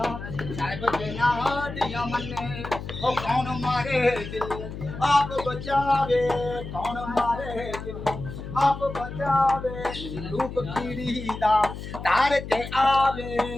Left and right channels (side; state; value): left; noise; hum, 9 dB below the sound